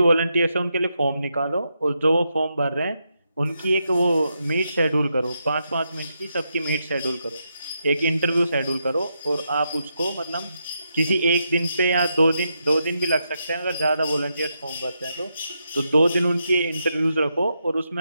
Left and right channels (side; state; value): both; inverted; correlation -0.83